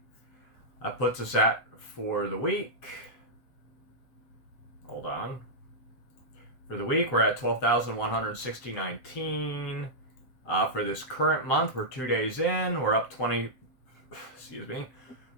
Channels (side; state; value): right; late; 7.7 ms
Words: That puts us at, for the week, hold on. For the week, we're at 12,160.19. For this current month, we're 2 days in. We're up